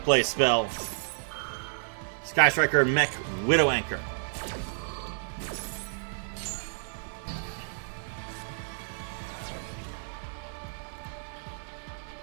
play spell. Sky Striker Mech Widow Anchor.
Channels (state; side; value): silent; left; 58 dB below the other